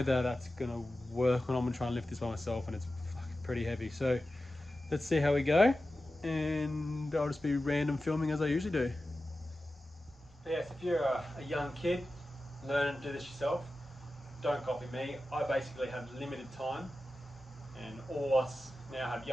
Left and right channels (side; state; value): both; normal; correlation 0.93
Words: that's gonna work when I'm gonna try and lift this by myself, and it's pretty heavy. So let's see how we go, and I'll just be random filming as I usually do. Yes, if you're a young kid learning to do this yourself, don't copy me. I basically have limited time, and all of us now have